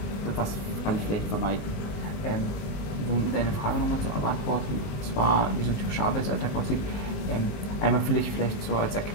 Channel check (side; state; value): right; late; 19 ms